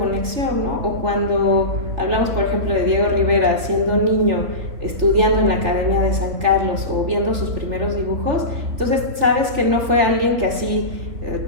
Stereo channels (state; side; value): late; left; 3.7 ms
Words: ¿no? O cuando hablamos, por ejemplo, de Diego Rivera siendo niño, estudiando en la Academia de San Carlos o viendo sus primeros dibujos, entonces sabes que no fue alguien que así